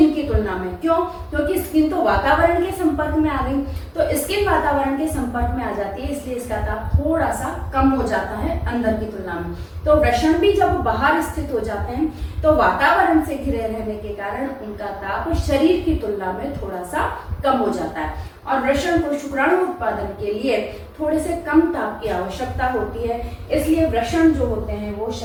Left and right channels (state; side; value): identical; both; correlation 1.00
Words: की तुलना में। क्यों? क्योंकि स्किन तो वातावरण के संपर्क में आ गई, तो स्किन वातावरण के संपर्क में आ जाती है, इसलिए इसका ताप थोड़ा सा कम हो जाता है अंदर की तुलना में। तो वृषण भी जब बाहर स्थित हो जाते हैं तो वातावरण से घिरे रहने के कारण उनका ताप शरीर की तुलना में थोड़ा सा कम हो जाता है। और वृषण को शुक्राणु उत्पादन के लिए थोड़े से कम ताप की आवश्यकता होती है, इसलिए वृषण जो होते हैं वो